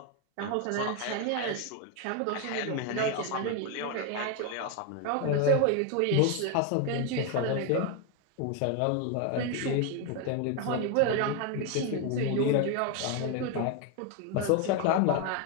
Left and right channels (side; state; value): both; different; correlation 0.01